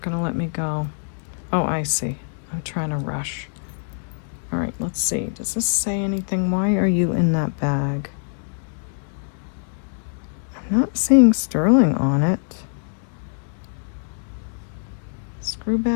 gonna let me go. Oh, I see. I'm trying to rush. All right, let's see. Does this say anything? Why are you in that bag? I'm not seeing sterling on it. Screw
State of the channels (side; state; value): right; silent; digital silence